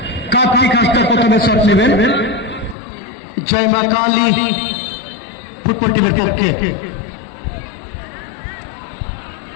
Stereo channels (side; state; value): right; drops out; at 2.8 s